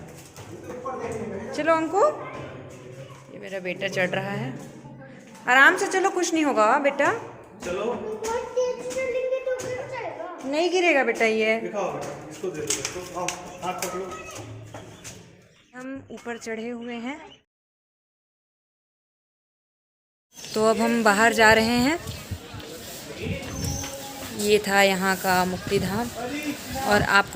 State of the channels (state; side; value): identical; both; correlation 1.00